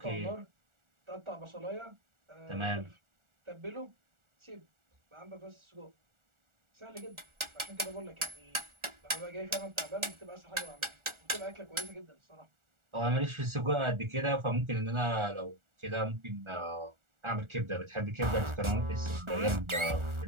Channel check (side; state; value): left; late; 1.4 ms